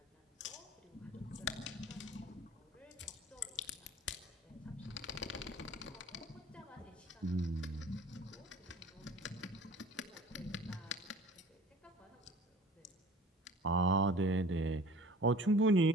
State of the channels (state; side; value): normal; both; correlation 0.45